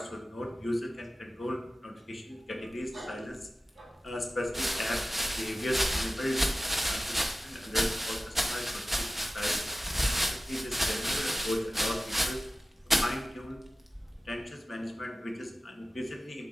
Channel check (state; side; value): normal; both; correlation 0.95